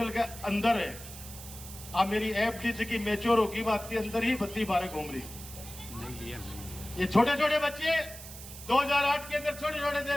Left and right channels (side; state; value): right; noise; hiss, 13 dB below the sound